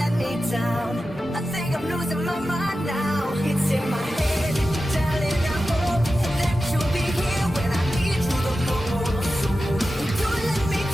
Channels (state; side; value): normal; both; correlation 0.93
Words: me down. I think I'm losing my mind now. It's in my head, darling, I hope that you'll be here when I need you the most. Don't let me,